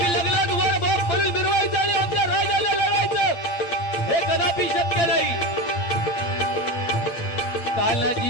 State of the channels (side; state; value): right; late; 8.7 ms